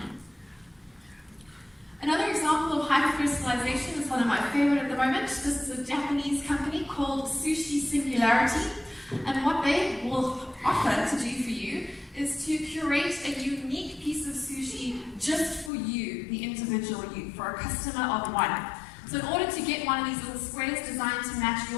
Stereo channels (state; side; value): drops out; right; at 15.7 s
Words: Another example of hyper-personalization is one of my favorite at the moment. This is a Japanese company called Sushi Singularity, and what they will offer to do for you is to curate a unique piece of sushi just for you, the individual you, for a customer of one. So in order to get one of these little squares designed to match